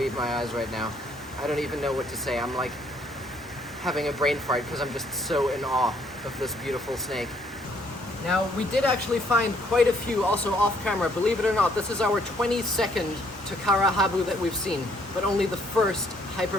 my eyes right now. I don't even know what to say. I'm like having a brain fart because I'm just so in awe of this beautiful snake. Now, we did actually find quite a few also off camera. Believe it or not, this is our 22nd Takara Habu that we've seen, but only the first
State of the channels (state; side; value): normal; both; correlation 0.66